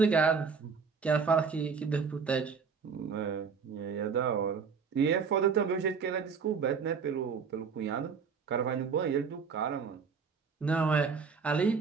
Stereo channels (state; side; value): quieter; left; 5.7 dB